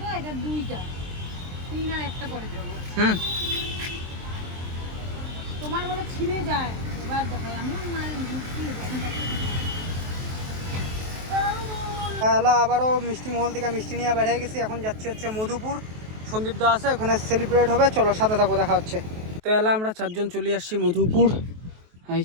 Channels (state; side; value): late; left; 23 ms